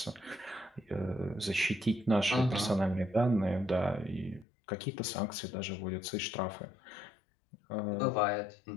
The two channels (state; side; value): drops out; right; at 4.5 s